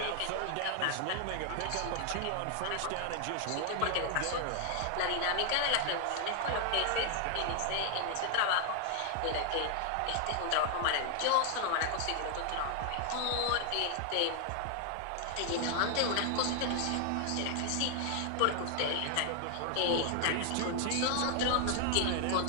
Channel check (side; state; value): both; different; correlation 0.00